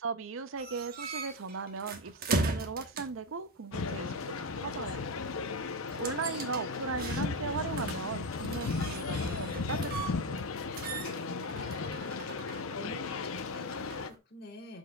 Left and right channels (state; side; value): normal; both; correlation 0.11